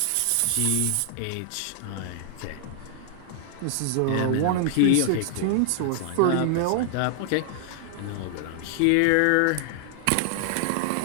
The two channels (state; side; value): different; both; correlation -0.01